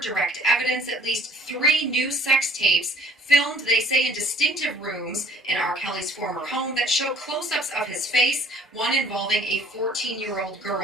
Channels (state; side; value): normal; both; correlation 0.55